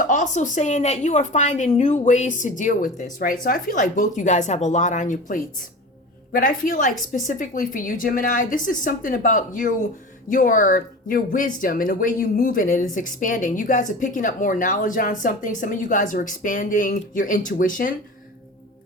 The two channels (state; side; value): normal; both; correlation 0.33